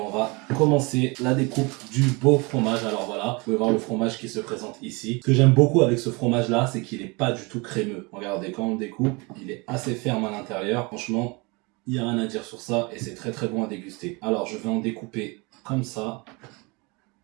va commencer la découpe du beau fromage. Alors voilà, vous pouvez voir le fromage qui se présente ici. Ce que j'aime beaucoup avec ce fromage-là, c'est qu'il n'est pas du tout crémeux. Regardez, quand on le découpe, il est assez ferme à l'intérieur. Franchement, il n'y a rien à dire sur ça et c'est très bon à déguster. Alors je vais en découper comme ça,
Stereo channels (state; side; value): quieter; left; 27.6 dB